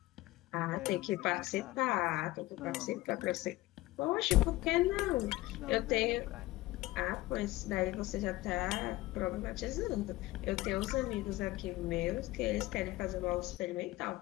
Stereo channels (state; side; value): quieter; right; 18.5 dB